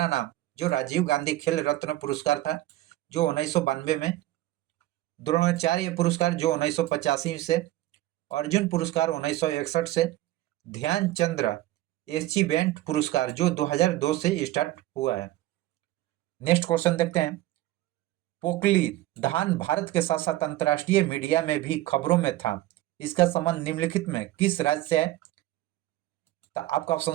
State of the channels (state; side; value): quieter; left; 15.9 dB